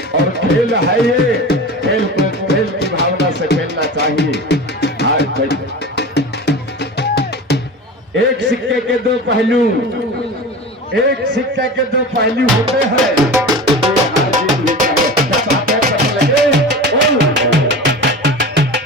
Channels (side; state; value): both; normal; correlation 0.32